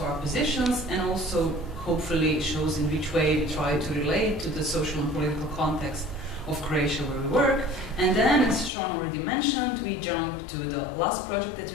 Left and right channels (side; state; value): right; drops out; at 8.7 s